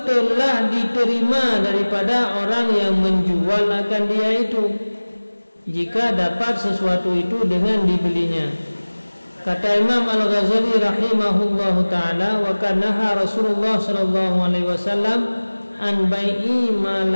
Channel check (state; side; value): inverted; both; correlation -1.00